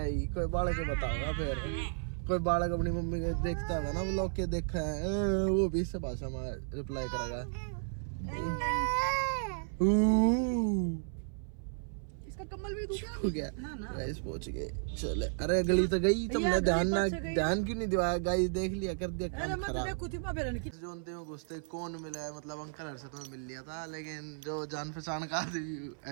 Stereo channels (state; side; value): silent; left; 55 dB below the other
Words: कोई बालक के बताऊंगा फिर। कोई बालक अपनी मम्मी के देखता होगा ना व्लॉग के, देखा है वो भी इस भाषा में रिप्लाई करेगा। इसका कम्बल भी हो गया। गाइस पहुंच गए, चले। अरे गली तो गई, तुमने ध्यान क्यों नहीं दिवाया? गाइस देख लिया, कर दिया काम खराब। जोनते में घुसते कौन मिला है, मतलब अंकल हर से तो मिल लिया था, लेकिन जो जान पहचान का